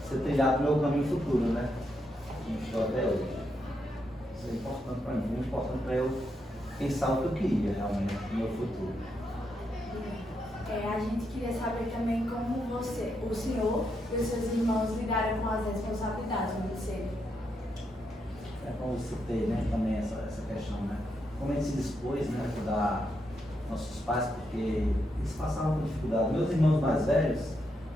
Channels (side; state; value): both; normal; correlation 0.81